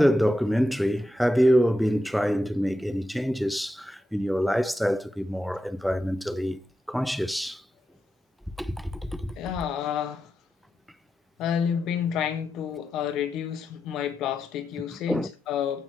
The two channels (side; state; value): both; normal; correlation 0.88